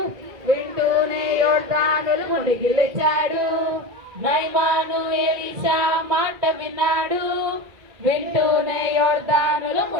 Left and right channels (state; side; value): late; left; 2.0 ms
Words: వింటూనే యోర్దానులో మునిగి లేచాడు. నయమాను ఎలీషా మాట విన్నాడు, వింటూనే యోర్దానులో